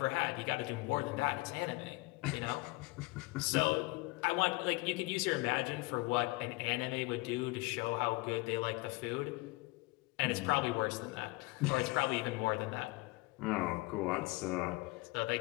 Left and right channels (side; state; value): right; quieter; 23.9 dB